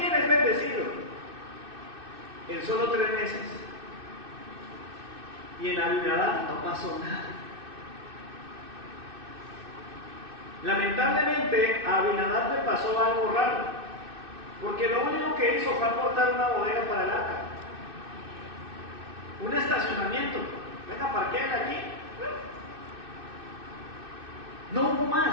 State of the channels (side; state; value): left; late; 2.6 ms